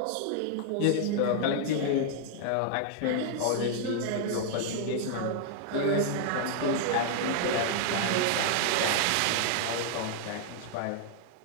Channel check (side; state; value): both; different; correlation -0.01